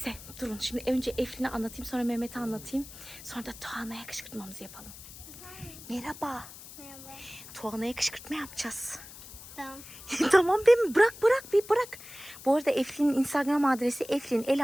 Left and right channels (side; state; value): left; noise; hiss, 16 dB below the sound